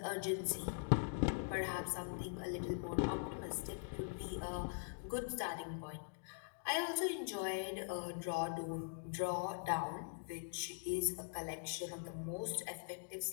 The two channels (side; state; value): right; silent; digital silence